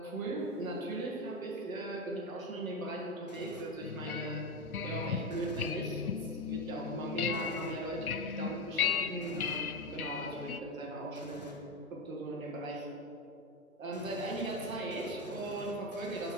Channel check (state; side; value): normal; both; correlation 0.16